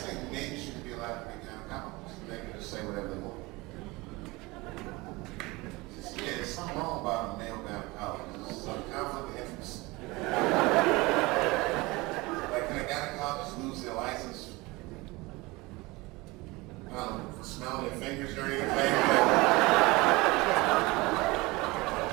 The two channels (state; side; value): quieter; left; 22.9 dB